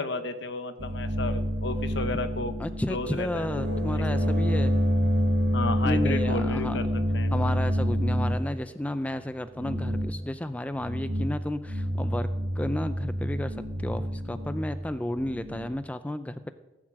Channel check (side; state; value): both; normal; correlation 0.83